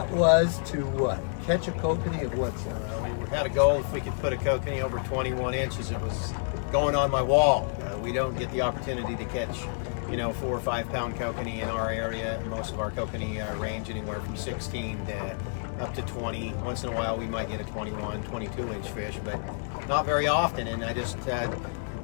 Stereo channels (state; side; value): silent; right; digital silence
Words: was to what? Catch a kokanee of what size? We had a goal if we could put a kokanee over 21 inches. It was going on my wall. We don't get the opportunity to catch, 4 or 5 pound kokanee in our area. Most of our kokanee range anywhere from 16 to up to 20. Once in a while we might get a 21, 22 inch fish, but not very often. And I just